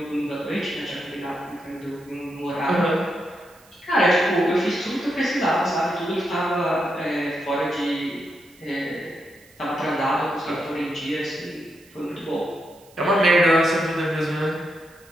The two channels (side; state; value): right; noise; hiss, 28 dB below the sound